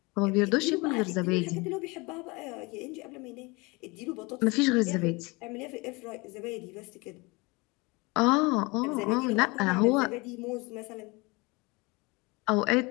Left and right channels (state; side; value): quieter; right; 26.2 dB